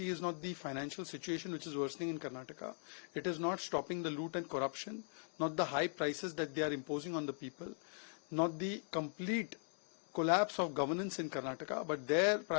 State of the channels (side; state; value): right; silent; 51 dB below the other